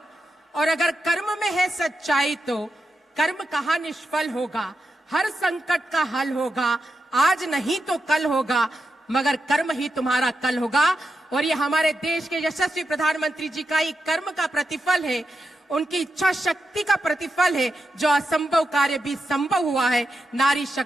और अगर कर्म में है सच्चाई तो कर्म कहाँ निष्फल होगा। हर संकट का हल होगा, आज नहीं तो कल होगा, मगर कर्म ही तुम्हारा कल होगा। और ये हमारे देश के यशस्वी प्रधानमंत्री जी का ही कर्म का प्रतिफल है, उनकी इच्छा शक्ति का प्रतिफल है, जो असंभव कार्य भी संभव हुआ है नारी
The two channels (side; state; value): both; normal; correlation 0.87